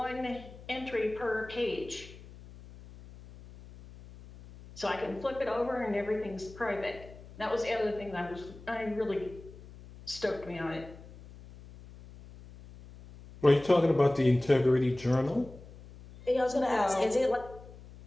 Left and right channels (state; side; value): noise; left; hum, 18 dB below the sound